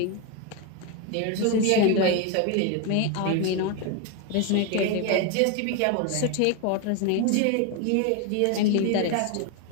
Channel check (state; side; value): different; both; correlation 0.02